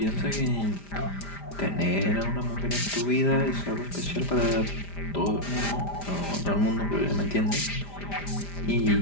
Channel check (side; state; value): right; late; 5.0 ms